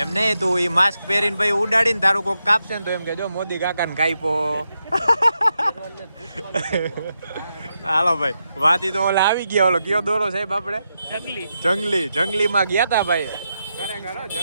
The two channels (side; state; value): both; inverted; correlation -0.85